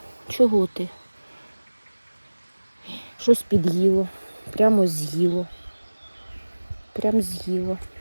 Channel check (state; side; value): inverted; both; correlation -1.00